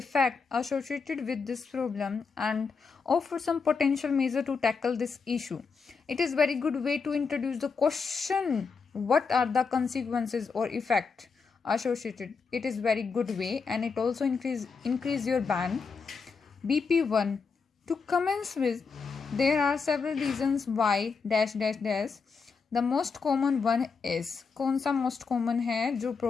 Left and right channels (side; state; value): right; quieter; 5.1 dB